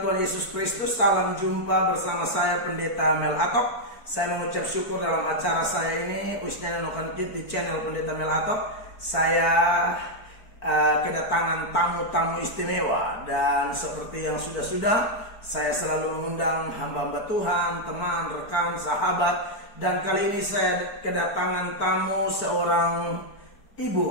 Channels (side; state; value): right; late; 4.5 ms